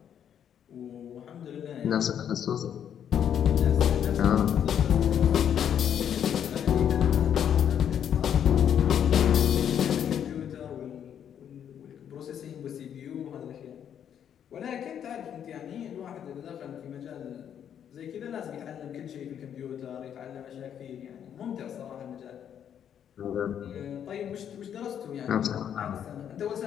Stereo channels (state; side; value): quieter; right; 9.1 dB